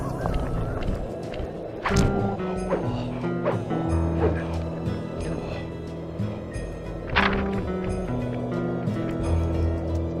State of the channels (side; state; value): both; identical; correlation 1.00